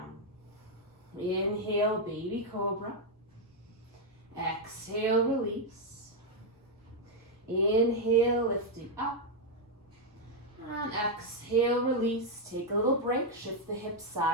Inhale, baby cobra. Exhale, release. Inhale, lifting up. And exhale, release. Take a little break. Shift the hips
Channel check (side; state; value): both; normal; correlation 0.00